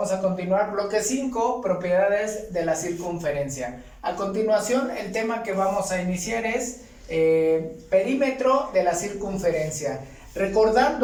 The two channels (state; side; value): identical; both; correlation 1.00